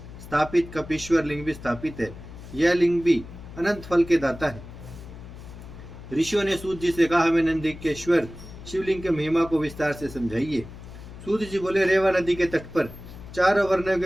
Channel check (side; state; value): left; noise; hum, 15 dB below the sound